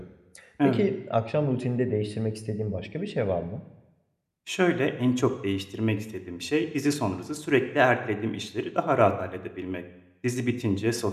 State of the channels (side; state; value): both; identical; correlation 1.00